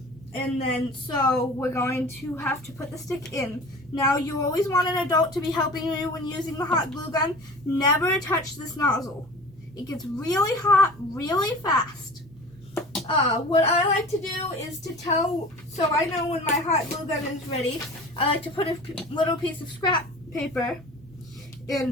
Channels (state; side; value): normal; both; correlation 0.40